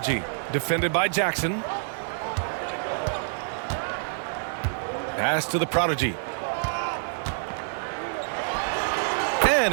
Defended by Jackson. Pass to the prodigy. And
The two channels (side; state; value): left; silent; digital silence